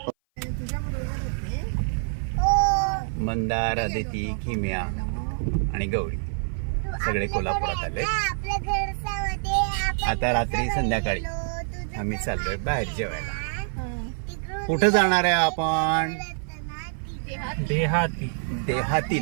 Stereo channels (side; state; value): left; silent; 57 dB below the other